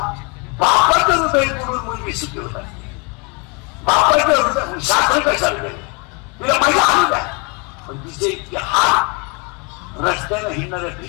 बापाचं हृदय पडून मुलगी सुखी होत असते. बापाचं हृदय शास्त्र कशाला गेले, तिला मजा आणू द्या, पण तिचे इतके हात रस्त्यानं हिंडणाऱ्या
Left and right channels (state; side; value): quieter; right; 31.6 dB